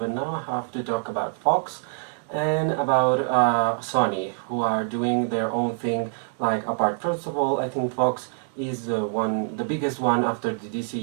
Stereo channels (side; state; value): left; silent; 62 dB below the other